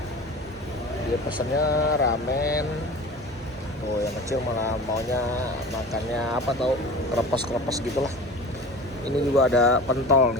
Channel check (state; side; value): normal; both; correlation 0.36